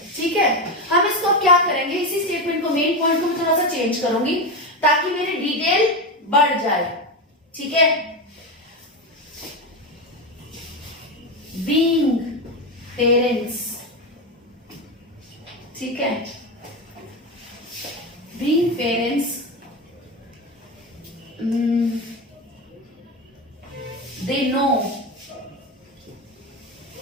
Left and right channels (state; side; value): normal; both; correlation 0.16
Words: ठीक है। हम इसको क्या करेंगे, इसी स्टेटमेंट को, मेन पॉइंट को मैं थोड़ा सा चेंज करूंगी ताकि मेरी डिटेल बढ़ जाए, ठीक है। बीइंग पेरेंट्स, ठीक है, being parents they know